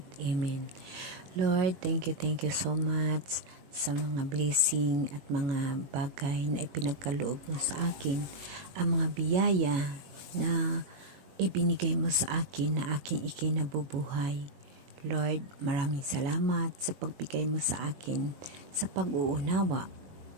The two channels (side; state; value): left; late; 21 ms